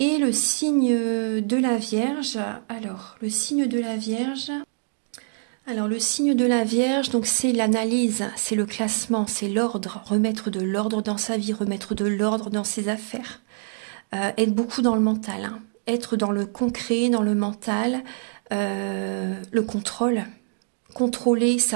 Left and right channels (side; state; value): left; silent; digital silence